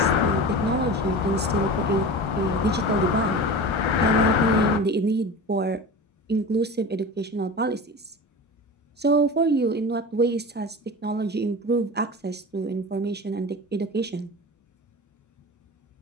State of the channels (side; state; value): both; normal; correlation 0.31